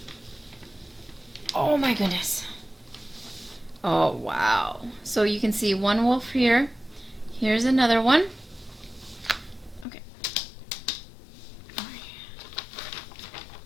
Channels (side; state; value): right; drops out; at 9.9 s